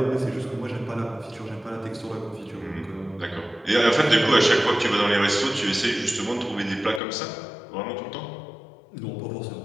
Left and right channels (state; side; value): drops out; right; at 7.0 s